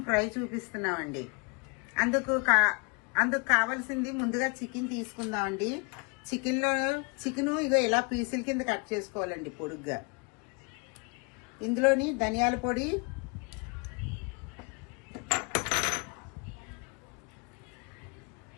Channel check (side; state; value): right; quieter; 32.5 dB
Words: ఫ్రై చూపిస్తున్నామండి. అందుకు కావాల్సింది ముందుగా చికెన్ తీసుకుందామండి. చికెన్ ఇగో ఇలా పీసుల కింద కట్ చేసుకోవాలండి పొడుగ్గా. ఇందులోని ధనియాల పొడి,